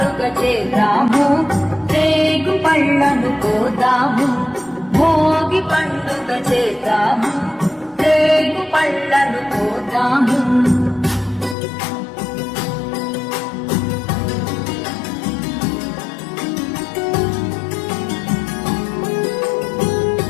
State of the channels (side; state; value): right; drops out; at 11.6 s